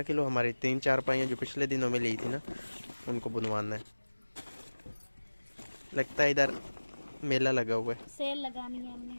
किलो। हमारी 3-4 पाइयां जो पिछले दिनों में ली थी ना, उनको बुनवाना है। लगता है इधर मेला लगा हुआ है। सेल लगानी है हमने।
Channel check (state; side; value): inverted; both; correlation -1.00